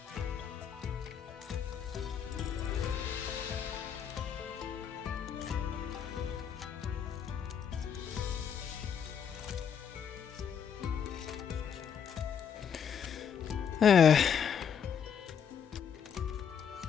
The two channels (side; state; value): right; quieter; 7.7 dB